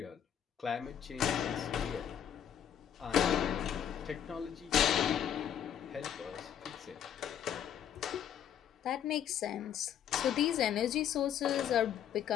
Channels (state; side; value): quieter; right; 9.3 dB